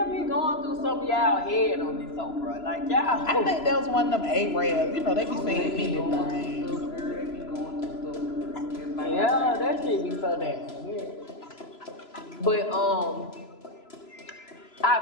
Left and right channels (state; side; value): late; right; 3.0 ms